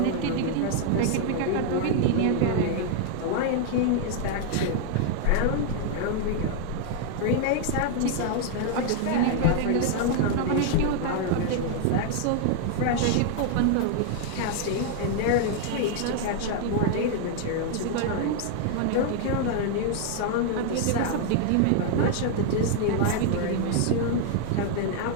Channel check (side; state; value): both; different; correlation 0.00